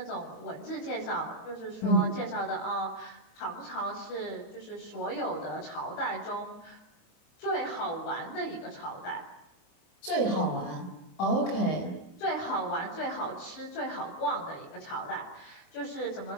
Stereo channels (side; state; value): right; late; 28 ms